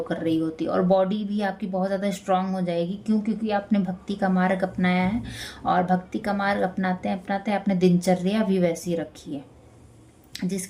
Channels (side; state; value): both; identical; correlation 1.00